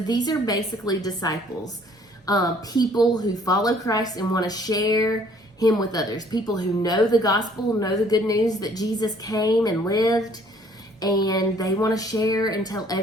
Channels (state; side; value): normal; both; correlation 0.59